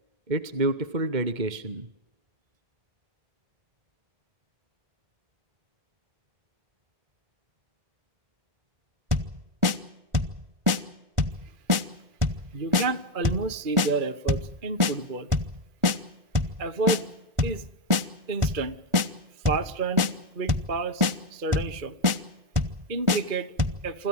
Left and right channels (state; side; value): late; left; 1.4 ms